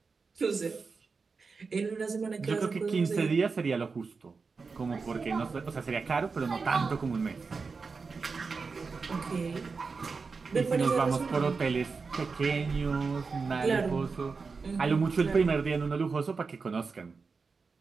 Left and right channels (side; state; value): left; quieter; 4.7 dB